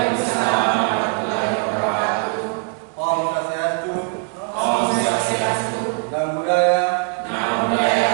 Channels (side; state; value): left; quieter; 36.8 dB